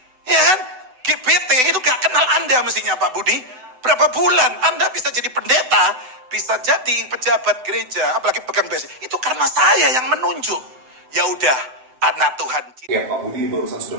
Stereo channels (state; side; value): late; left; 7.9 ms